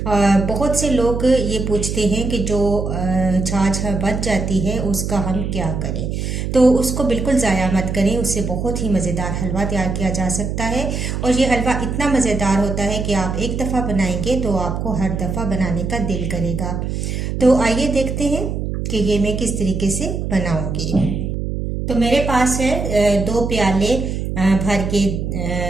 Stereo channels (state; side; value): noise; right; hum, 3 dB below the sound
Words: बहुत से लोग ये पूछते हैं कि जो छाछ बच जाती है उसका हम क्या करें। तो उसको बिल्कुल ज़ाया मत करें, उससे बहुत ही मज़ेदार हलवा तैयार किया जा सकता है। और ये हलवा इतना मज़ेदार होता है कि आप एक दफ़ा बनाएंगे तो आपको हर दफ़ा बनाने का दिल करेगा। तो आइए देखते हैं कि ये मैं किस तरीके से बनाऊंगी। तो मेरे पास है 2 प्याले भर के